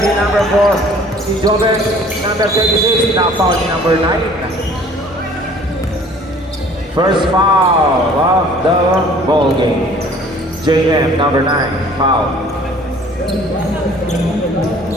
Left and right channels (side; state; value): both; normal; correlation 0.52